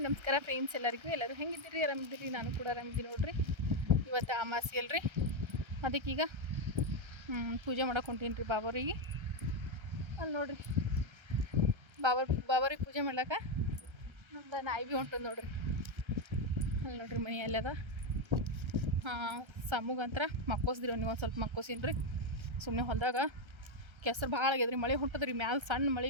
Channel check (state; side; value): late; left; 1.3 ms